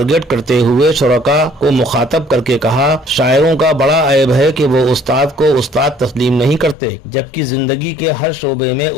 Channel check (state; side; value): drops out; right; at 6.8 s